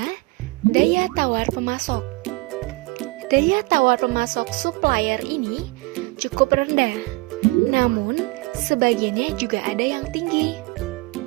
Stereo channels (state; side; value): quieter; left; 23.9 dB